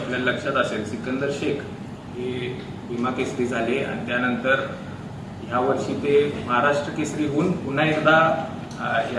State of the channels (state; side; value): identical; both; correlation 1.00